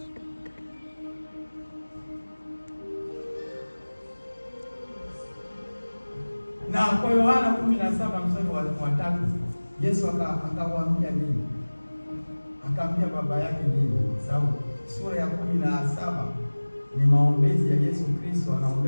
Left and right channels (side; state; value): both; inverted; correlation -1.00